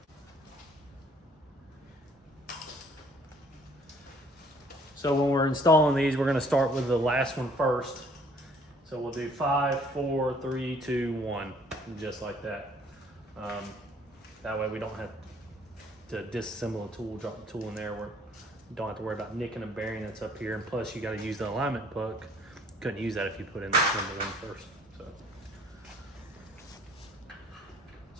So when we're installing these, we're gonna start with the last one first. So we'll do 5, 4, 3, 2, 1, just like that. That way we don't have to disassemble a tool, drop the tool in there. We don't have to worry about nicking a bearing that's up here. And plus you gotta use the alignment puck. Couldn't use that if you put in this number 1 first.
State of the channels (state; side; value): normal; both; correlation 0.59